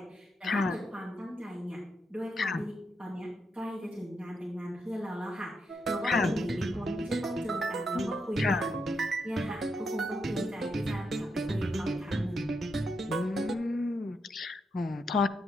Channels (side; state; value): both; normal; correlation 0.82